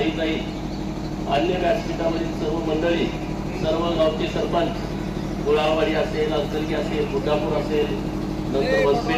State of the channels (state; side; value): identical; both; correlation 1.00